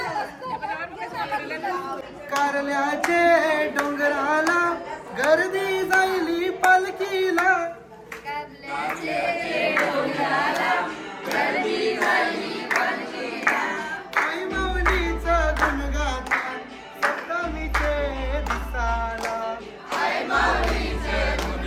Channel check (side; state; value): both; identical; correlation 1.00